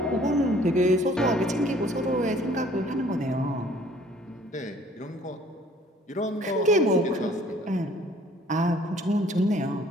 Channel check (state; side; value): normal; both; correlation 0.56